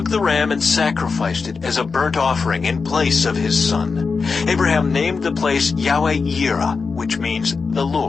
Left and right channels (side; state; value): right; quieter; 4.8 dB